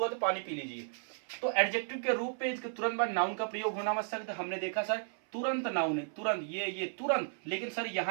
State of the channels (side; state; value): left; silent; 55 dB below the other